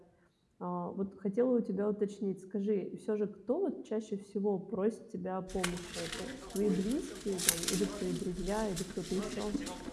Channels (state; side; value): identical; both; correlation 1.00